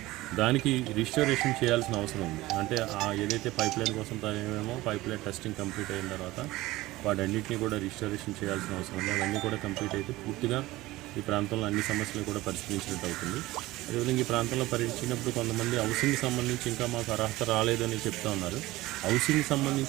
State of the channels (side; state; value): left; quieter; 18.4 dB